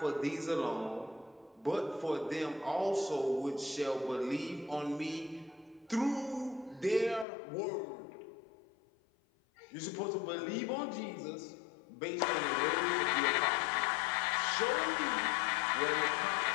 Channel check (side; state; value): right; drops out; at 7.2 s